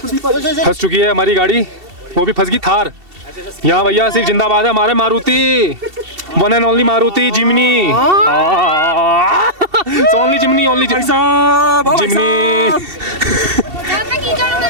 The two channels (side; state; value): left; late; 2.7 ms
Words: फंस चुकी है हमारी गाड़ी, वो भी फंस गई थार। यहाँ भैया सिर्फ जिंदाबाद है हमारे Maruti, one and only Maruti Jimny. Only Jimny, only Jimny.